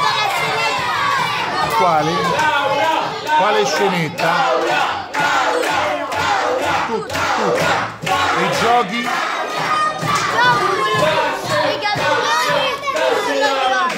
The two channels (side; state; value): both; identical; correlation 1.00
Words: Quale? Quale scenetta? Tutti. E i giochi?